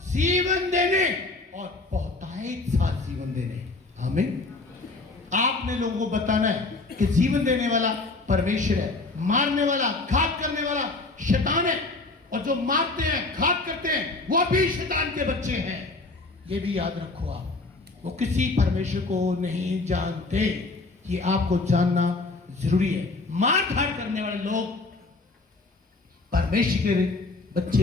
जीवन देने और बहुतायत साथ जीवन देने, आमीन। आपने लोगों को बताना है कि जीवन देने वाला परमेश्वर है, मारने वाला, घात करने वाला शैतान है, और जो मारते हैं, घात करते हैं, वो भी शैतान के बच्चे हैं। ये भी याद रखो आप, वो किसी परमेश्वर को नहीं जानते, ये आपको जानना जरूरी है। मार धाड़ करने वाले लोग परमेश्वर के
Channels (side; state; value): right; quieter; 3.4 dB